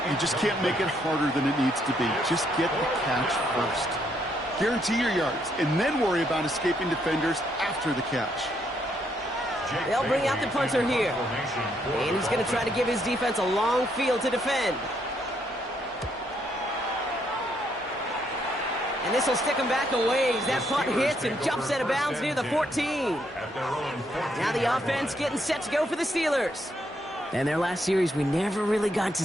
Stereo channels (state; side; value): normal; both; correlation 0.74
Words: you just can't make it harder than it needs to be. Just get the catch first. Guarantee your yards, and then worry about escaping defenders after the catch. They'll bring out the punter here. And he's going to try to give his defense a long field to defend. And this will stick him back a ways. That punt hits and jumps out of bounds near the 14. Now the offense getting set to go for the Steelers. And their last series, we never really got to